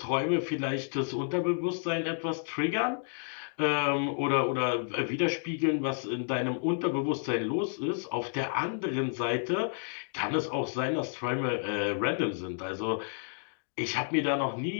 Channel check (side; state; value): right; silent; digital silence